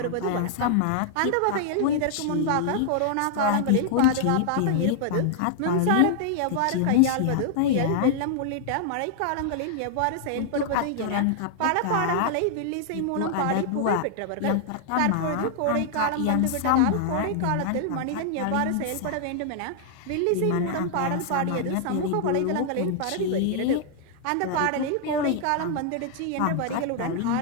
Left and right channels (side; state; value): both; different; correlation -0.01